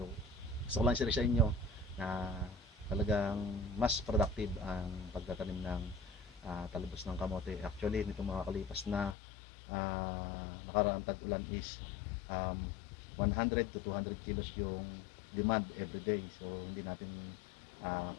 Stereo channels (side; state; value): right; drops out; at 9.2 s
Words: gusto ko lang share sa inyo na talagang mas productive ang pagtatanim ng talbos ng kamote. Actually nitong mga kalipas na nakaraang tag-ulan is 100 to 200 kilos yung demand every day. So hindi natin